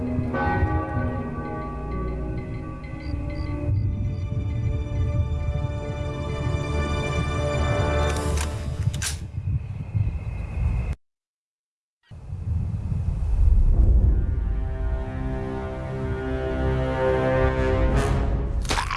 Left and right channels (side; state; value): both; identical; correlation 1.00